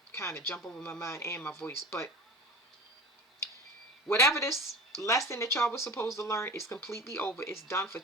kind of jump over my mind and my voice. But whatever this lesson that y'all was supposed to learn is completely over. It's done for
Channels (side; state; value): both; normal; correlation 0.34